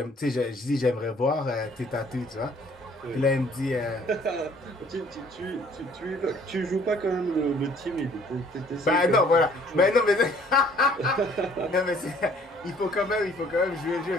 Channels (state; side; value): normal; both; correlation 0.58